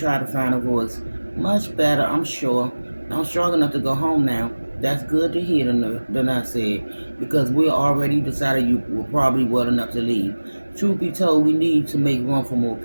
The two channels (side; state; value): both; inverted; correlation -1.00